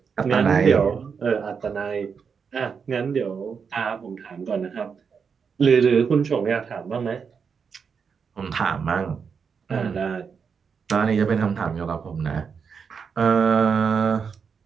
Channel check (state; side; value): quieter; left; 6.1 dB